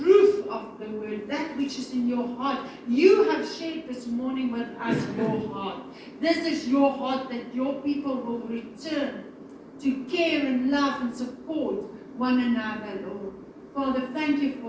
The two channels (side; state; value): both; identical; correlation 1.00